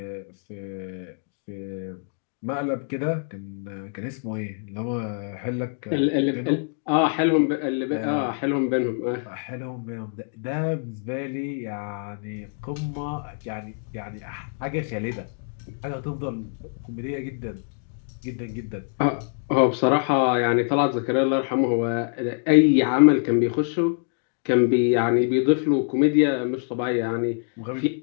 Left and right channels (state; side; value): silent; right; 62 dB below the other